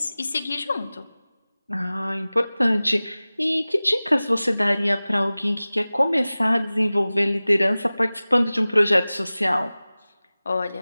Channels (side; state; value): both; inverted; correlation -0.98